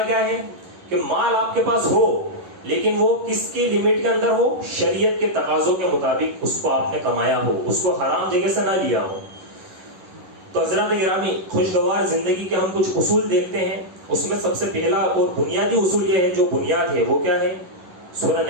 کیا ہے کہ مال آپ کے پاس ہو لیکن وہ کس کی لمٹ کے اندر ہو؟ شریعت کے تقاضوں کے مطابق اس کو آپ نے کمایا ہو، اس کو حرام جگہ سے نہ لیا ہو. تو حضرات گرامی، خوشگوار زندگی کے ہم کچھ اصول دیکھتے ہیں. اس میں سب سے پہلا اور بنیادی اصول یہ ہے، جو بنیاد ہے وہ کیا ہے؟ سورہ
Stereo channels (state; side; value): late; left; 11 ms